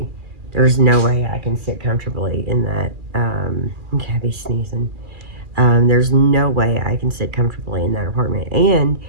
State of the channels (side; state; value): left; late; 2.4 ms